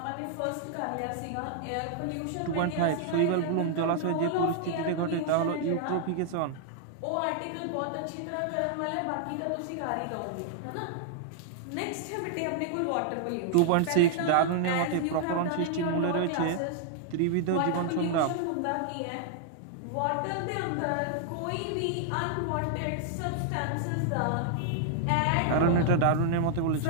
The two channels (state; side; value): different; both; correlation -0.01